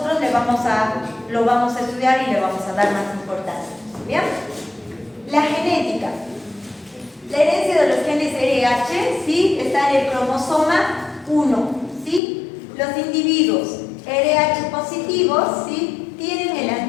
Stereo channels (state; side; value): drops out; right; at 12.2 s